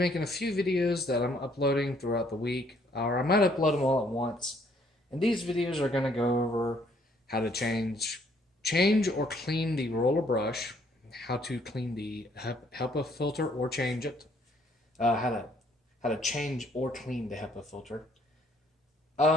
a few videos that I'm uploading throughout the week, or I might upload them all at once. And these videos are going to go over how to change or clean the roller brush, how to clean the HEPA filter or change it, how to change or clean the HEPA filter.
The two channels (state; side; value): normal; both; correlation 0.65